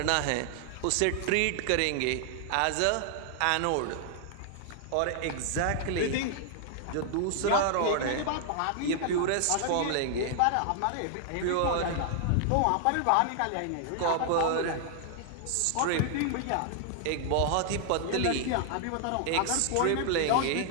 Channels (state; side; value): different; both; correlation 0.00